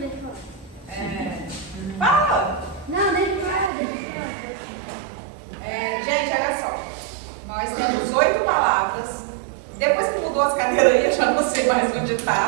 eu falar. Fala! Não, deixa eu falar. Gente, olha só. Nós temos 8 palavras. Depois que mudou as cadeiras aí, eu já não sei mais onde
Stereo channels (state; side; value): drops out; left; at 3.7 s